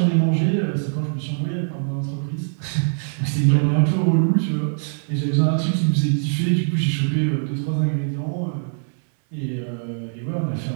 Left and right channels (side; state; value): left; silent; 64 dB below the other